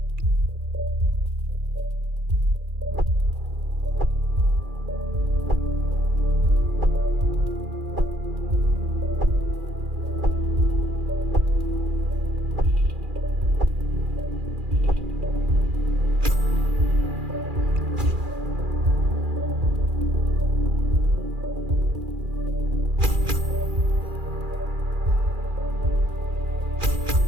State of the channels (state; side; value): late; left; 2.4 ms